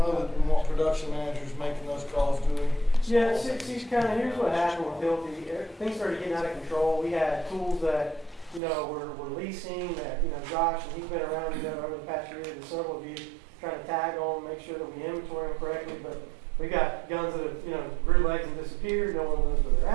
that we want production managers making those calls, do we? Yeah, here's what happened with Hilti. Things started getting out of control. We had tools that, we're leasing that, Josh, and he's been around, over the past year, and several of you trying to tag on, make sure that we inventory them correctly, but we got guns that have, grew legs and disappeared, no one knows where they're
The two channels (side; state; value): left; drops out; at 8.6 s